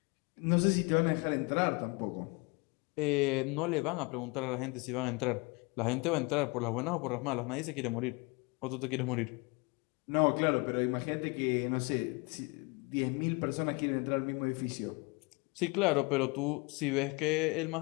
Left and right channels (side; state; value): right; quieter; 28.6 dB